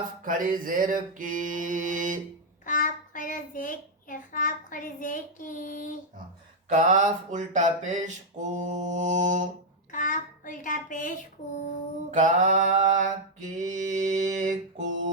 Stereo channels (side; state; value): both; normal; correlation -0.01